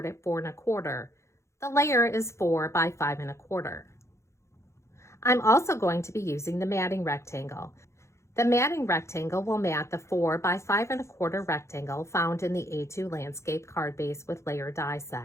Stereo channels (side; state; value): right; late; 0.14 ms